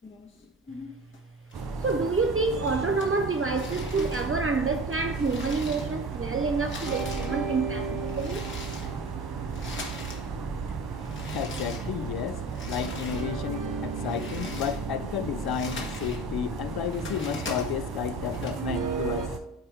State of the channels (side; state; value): both; normal; correlation 0.35